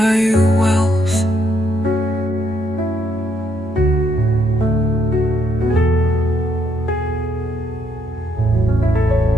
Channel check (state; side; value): normal; both; correlation 0.73